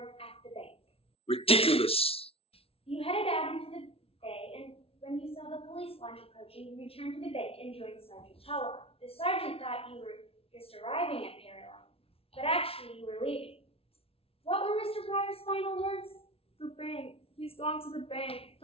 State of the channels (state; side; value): late; right; 0.27 ms